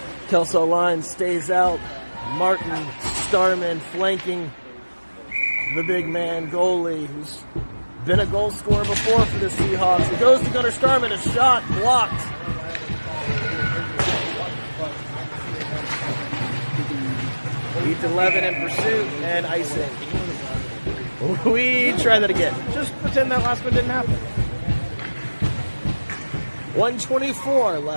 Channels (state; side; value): inverted; both; correlation -1.00